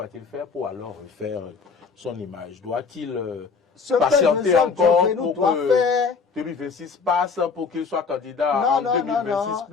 il faire pour alors refaire son image? Doit-il patienter encore pour que 2026 passe pour qu'il soit candidat en 2026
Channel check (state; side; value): quieter; right; 5.2 dB